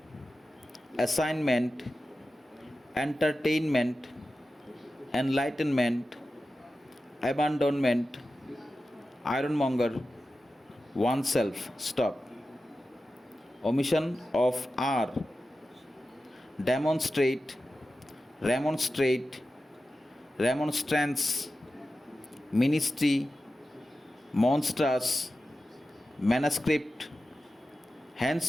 assignment, entertainment, enlightenment, abandonment, ironmonger, oneself. Stop. Omission of R. Demonstrate, remonstrate, remonstrance, ministry, monstrous, manuscript,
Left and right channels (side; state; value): both; normal; correlation 0.93